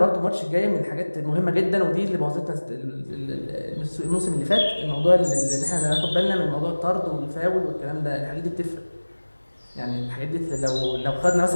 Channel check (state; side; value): inverted; both; correlation -1.00